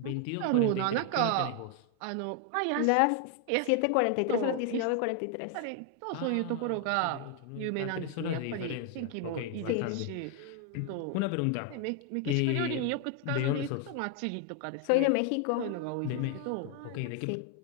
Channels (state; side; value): different; both; correlation 0.00